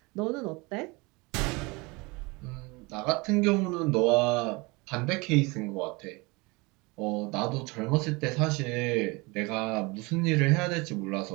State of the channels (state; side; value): quieter; left; 25.9 dB